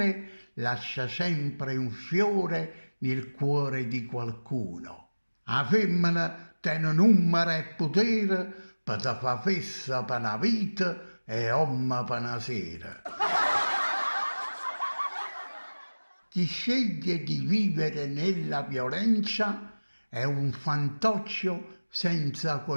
lascia sempre un fiore nel cuore di qualcuno. La femmina tiene numero e potere per te fa fessa per una vita e uomo per una sera. Chi sceglie di vivere nella violenza è un fantoccio senza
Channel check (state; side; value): inverted; both; correlation -1.00